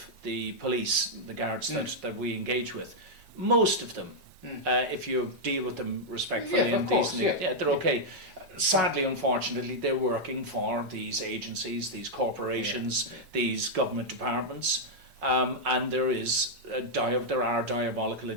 the police, the guards that we engage with, most of them, if you deal with them respectfully and decently, they're okay. Sadly, unfortunately, they're working for these agencies, these corporations, these government departments. And there are diabolical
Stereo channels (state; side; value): late; left; 3.5 ms